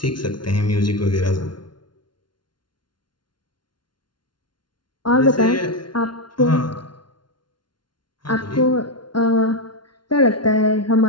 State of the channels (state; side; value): late; right; 0.71 ms